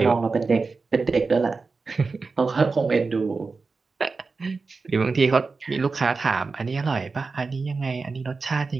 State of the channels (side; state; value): left; quieter; 4.3 dB